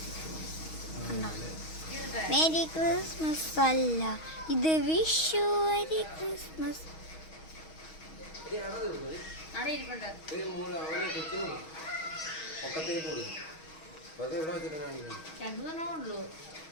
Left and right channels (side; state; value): right; late; 6.3 ms